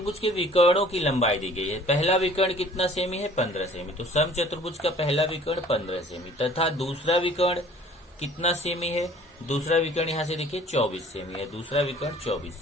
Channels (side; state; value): both; normal; correlation 0.52